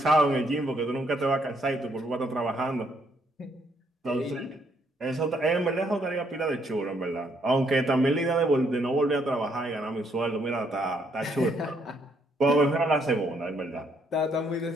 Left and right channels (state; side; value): normal; both; correlation 0.71